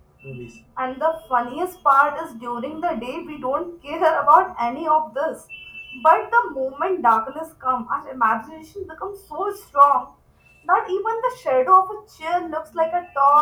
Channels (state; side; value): identical; both; correlation 1.00